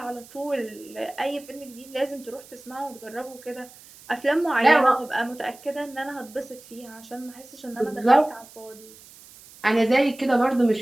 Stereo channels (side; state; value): right; noise; hiss, 21 dB below the sound